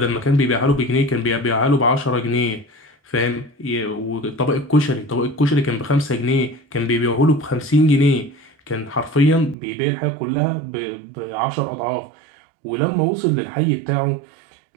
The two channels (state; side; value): drops out; left; at 9.6 s